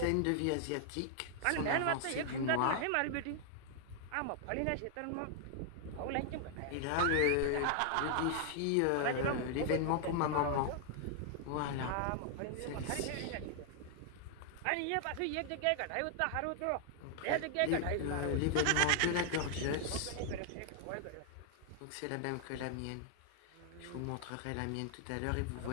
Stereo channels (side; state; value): both; different; correlation 0.00